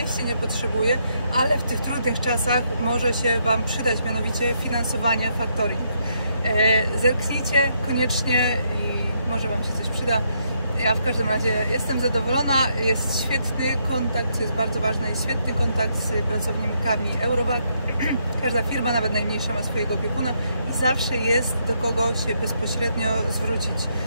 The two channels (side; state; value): both; inverted; correlation -0.75